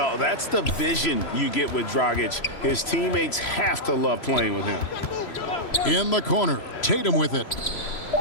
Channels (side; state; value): right; late; 3.0 ms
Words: that's the vision you get with Dragic. His teammates have to love playing with him. In the corner, Tatum with it.